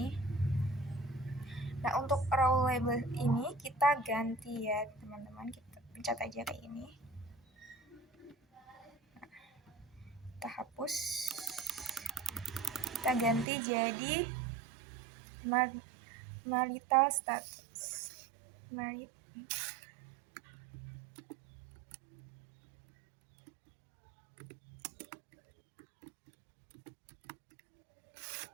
Nah, untuk row label ini kita ganti ya teman-teman. Kita pencet aja kayak ini. Nah, kita hapus. Kita ganti jadi marital status.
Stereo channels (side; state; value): left; drops out; at 13.5 s